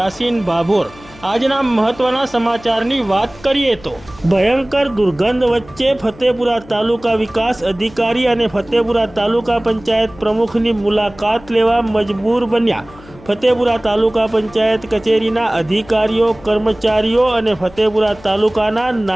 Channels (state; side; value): noise; left; hum, 22 dB below the sound